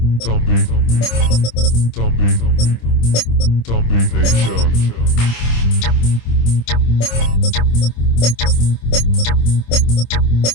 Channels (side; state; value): right; late; 26 ms